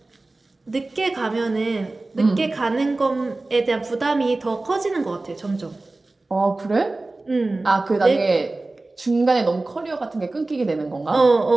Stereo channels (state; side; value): quieter; left; 3.1 dB